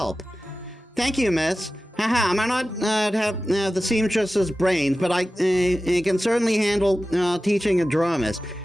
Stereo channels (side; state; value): both; normal; correlation 0.95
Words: Thank you, miss. Haha, I might not have the seamstress's brains, but I can certainly handle teaching a dramas.